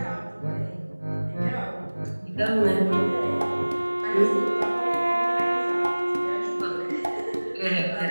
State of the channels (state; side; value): inverted; both; correlation -1.00